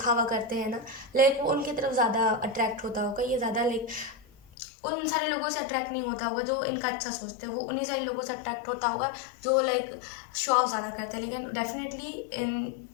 करते हैं ना, लाइक वो उनकी तरफ ज़्यादा अट्रैक्ट होता होगा। ये ज़्यादा लाइक उन सारे लोगों से अट्रैक्ट नहीं होता होगा जो इनका अच्छा सोचते हैं, वो उन्हीं सारे लोगों से अट्रैक्ट होता होगा जो लाइक शो ऑफ ज़्यादा करते हैं। लेकिन डेफिनेटली इन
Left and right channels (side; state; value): right; drops out; at 4.5 s